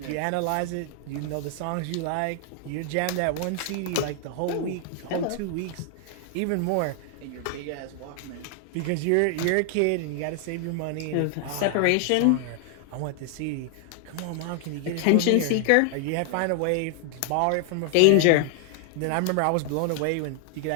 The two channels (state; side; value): different; both; correlation 0.00